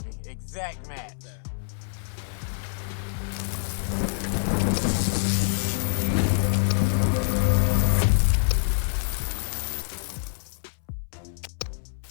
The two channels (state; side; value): silent; right; 61 dB below the other